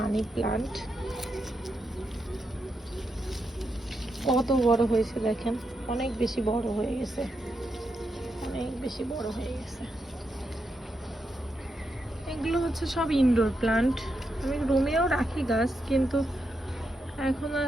প্লান্ট, কত বড় হয়েছে দেখেন, অনেক বেশি বড় হয়ে গেছে, অনেক বেশি বড় হয়ে গেছে। এগুলো হচ্ছে সব ইনডোর প্লান্ট। আমি রুমেও রাখি গাছ, কিন্তু এখন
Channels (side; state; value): both; normal; correlation 0.84